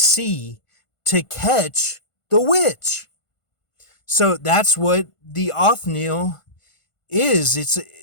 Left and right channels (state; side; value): late; right; 1.5 ms